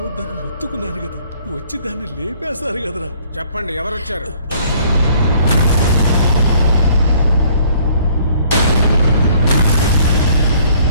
మొత్తుకున్నాను కదా, వచ్చి దాన్ని లేపేశారు కదరా. చెప్పండి, ఎవరొచ్చారు?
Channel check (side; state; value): both; inverted; correlation -0.59